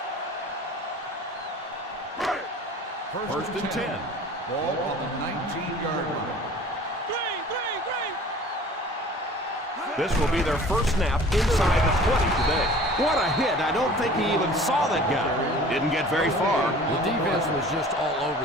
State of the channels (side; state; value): both; normal; correlation 0.46